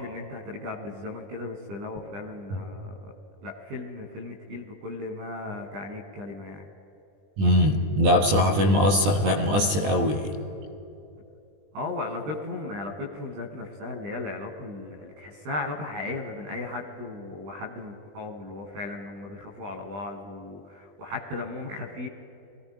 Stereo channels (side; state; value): left; late; 20 ms